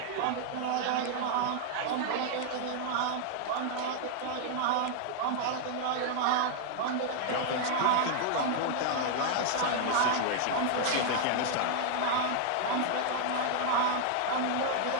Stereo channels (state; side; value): different; both; correlation 0.00